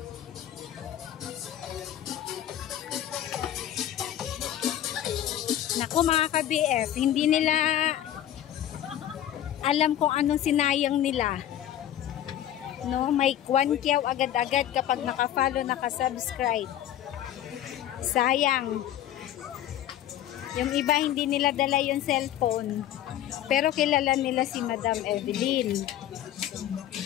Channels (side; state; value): right; quieter; 11.6 dB